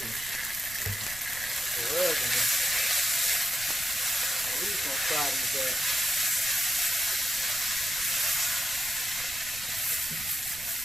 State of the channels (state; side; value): noise; right; rumble, 17 dB below the sound